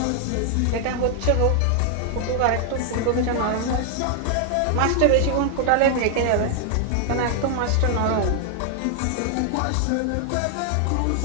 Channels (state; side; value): different; both; correlation 0.00